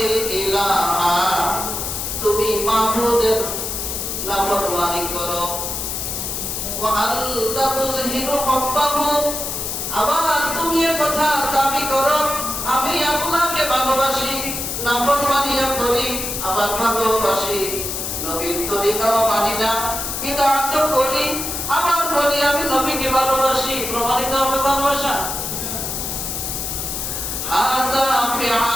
ইলাহা, তুমি মাবুদের নাফরমানি করো। ওয়া আনতা তুযহিরু হুব্বাহু, আবার তুমি এ কথা দাবি করো আমি আল্লাহকে ভালোবাসি, নাফরমানিও করি আবার ভালোবাসি, নবীর তরিকাও মানি না, বিদআত করি আবার বলি আমি নবীকে ভালোবাসি। প্রমাণিত হবে ভালোবাসা? হাযা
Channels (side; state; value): left; noise; hiss, 4 dB below the sound